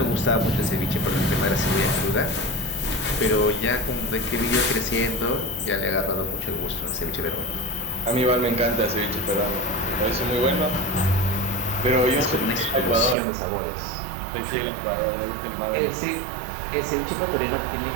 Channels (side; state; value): left; drops out; at 13.2 s